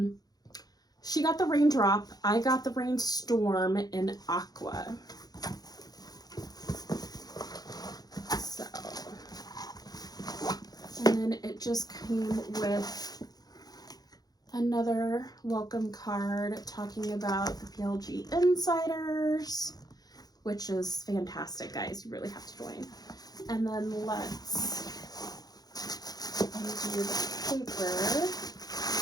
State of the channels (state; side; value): late; right; 0.19 ms